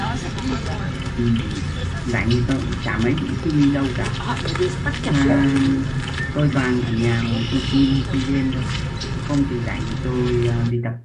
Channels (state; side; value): identical; both; correlation 1.00